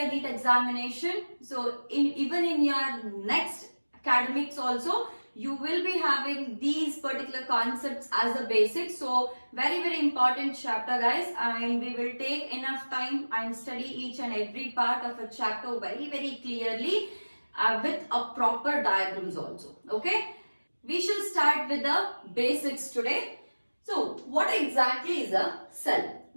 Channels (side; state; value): both; inverted; correlation -1.00